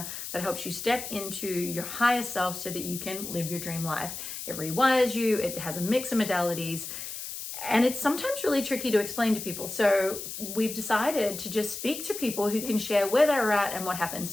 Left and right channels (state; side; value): noise; left; hiss, 8 dB below the sound